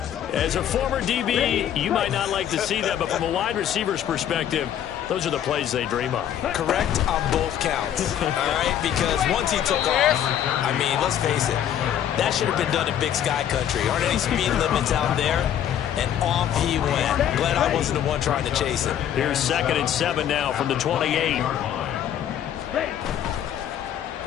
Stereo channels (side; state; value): right; quieter; 10.2 dB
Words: As a former DB, you might not like to see that, but from a wide receiver's perspective, those are the plays they dream of. Correct on both counts, all right? Because once he took off, I mean, let's face it, that should have been done in Big Sky Country. Aren't any speed limits out there? And off he went. Glad I wasn't the one trying to chase him. Here's 2nd and 7 now from the 28.